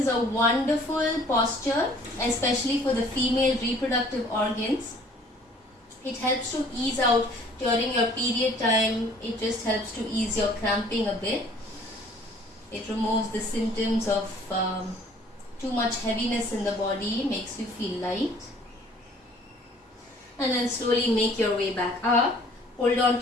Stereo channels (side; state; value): both; normal; correlation 0.54